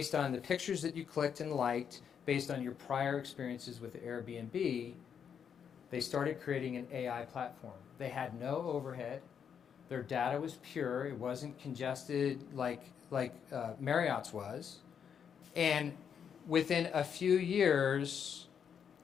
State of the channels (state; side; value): quieter; right; 7.6 dB